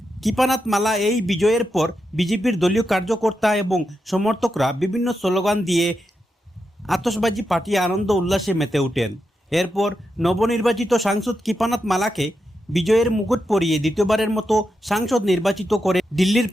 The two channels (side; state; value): both; normal; correlation 0.86